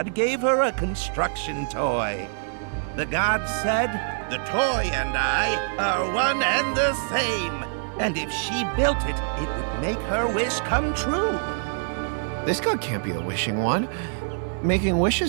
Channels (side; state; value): left; silent; digital silence